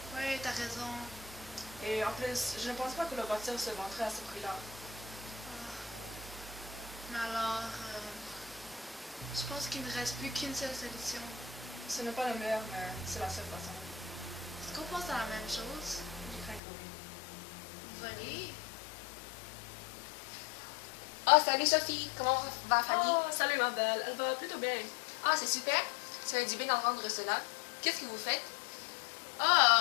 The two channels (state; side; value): drops out; right; at 16.6 s